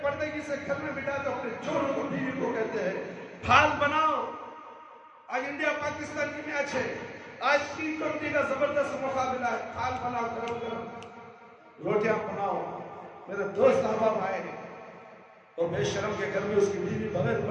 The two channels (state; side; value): identical; both; correlation 1.00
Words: پردگی سے گھر میں بٹا کر اپنے چوروں کو بیوی کو کہتے ہیں پھال بناؤ۔ آج انڈیا پاکستان کی میچ ہے، آج T20 کا زبردست مقابلہ ہے، پھال بناؤ، گرم گرم روٹیاں بناؤ۔ میرے دوست احباب آئے ہیں اور بے شرم کے گھر میں اس کی بیوی بغیر